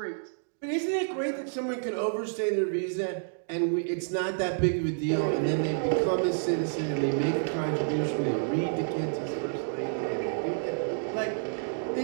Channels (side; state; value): left; silent; digital silence